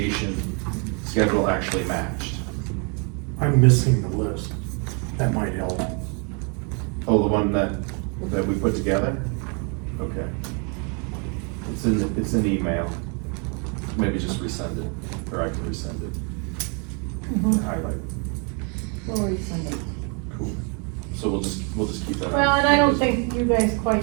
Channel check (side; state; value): left; quieter; 36.3 dB